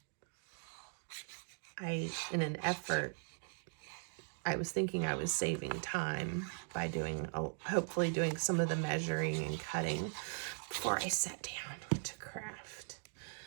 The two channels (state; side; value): silent; left; 51 dB below the other